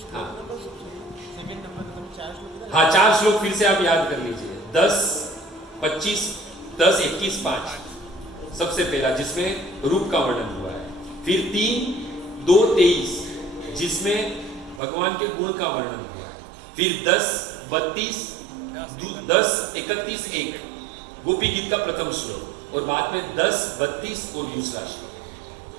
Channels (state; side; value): drops out; left; at 14.8 s